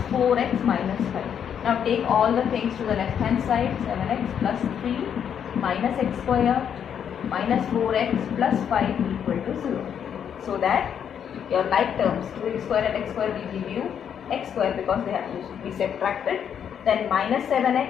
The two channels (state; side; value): quieter; right; 8.4 dB